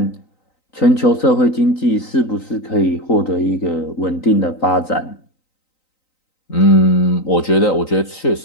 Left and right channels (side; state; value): right; late; 3.9 ms